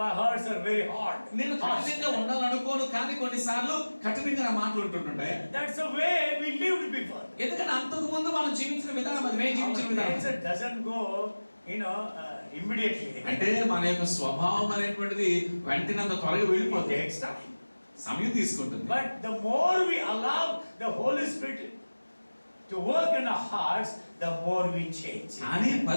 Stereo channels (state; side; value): inverted; both; correlation -1.00